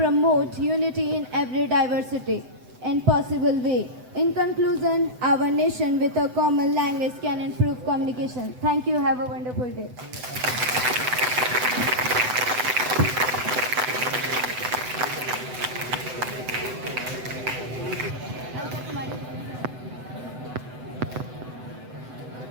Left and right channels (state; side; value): late; left; 8.0 ms